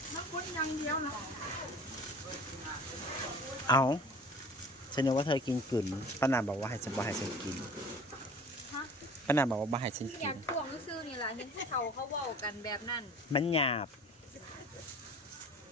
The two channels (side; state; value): both; normal; correlation 0.44